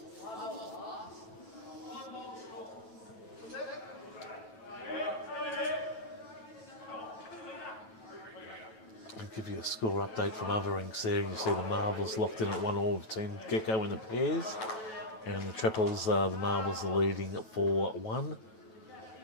I'll give you a score update from other rinks there. You see the marbles locked in at 1-all between Gecko in the pairs. And in the triples, the marbles are leading at 4-1.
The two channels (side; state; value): right; late; 9.1 ms